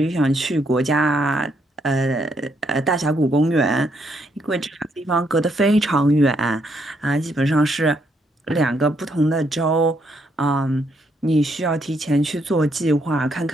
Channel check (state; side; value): normal; both; correlation 0.74